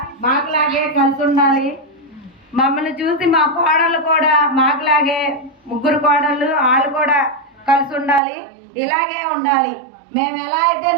మాకులాగే కలిసి ఉండాలి. మమ్మల్ని చూసి మా కోడళ్ళు కూడా మాకులాగే ముగ్గురు కోడళ్ళు వాళ్ళు కూడా కలిసి ఉండాలి, ఇలాగే ఉండాలి. మేము ఎలా అయితే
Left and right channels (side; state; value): left; drops out; at 8.2 s